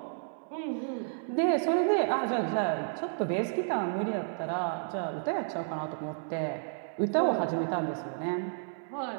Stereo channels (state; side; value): silent; left; 57 dB below the other